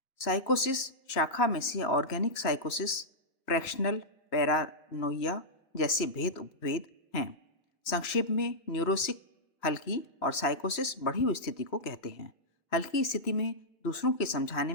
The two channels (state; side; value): late; right; 2.7 ms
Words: साइकोसिस शाखा में से ऑर्गेनिक साइकोसिस, फ्रैक्शनल पैरानोइया जैसे भेद उपभेद हैं। संक्षेप में न्यूरोसिक हल्की और साइकोसिस बढ़ी हुई स्थिति को कहते हैं। हल्की स्थिति में दूसरों के समझाने